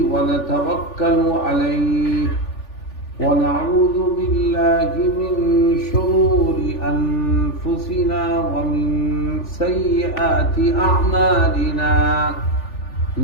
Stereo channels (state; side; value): late; right; 3.4 ms